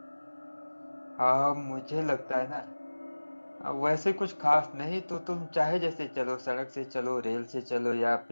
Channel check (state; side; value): inverted; both; correlation -1.00